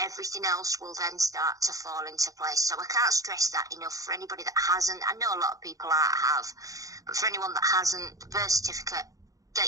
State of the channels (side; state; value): left; late; 0.17 ms